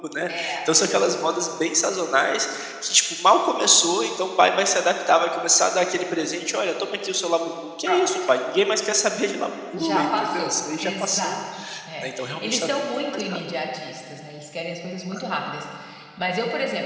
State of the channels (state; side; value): identical; both; correlation 1.00